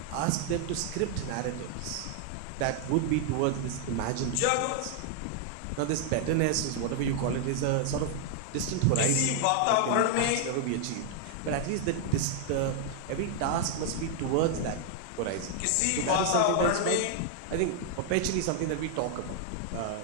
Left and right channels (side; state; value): both; different; correlation 0.00